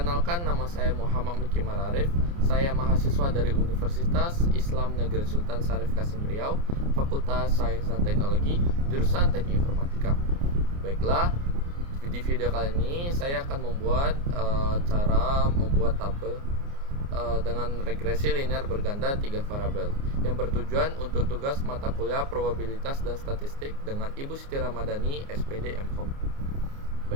nama saya Muhammad Mukimar Arif. Saya mahasiswa dari Universitas Islam Negeri Sultan Syarif Kasim Riau, Fakultas Sains dan Teknologi, jurusan Teknik Informatika. Baiklah, di video kali ini saya akan membuat cara membuat tabel dengan regresi linear berganda 3 variabel yang bertujuan untuk tugas mata kuliah probabilitas dan statistik dengan Ibu Siti Ramadhani, SPD MKOM.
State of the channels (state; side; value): late; left; 29 ms